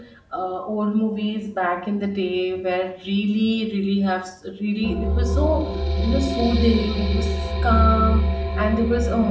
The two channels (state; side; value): identical; both; correlation 1.00